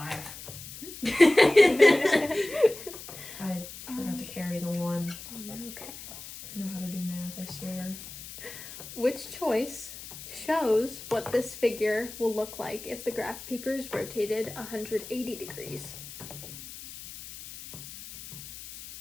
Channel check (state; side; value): noise; left; hiss, 13 dB below the sound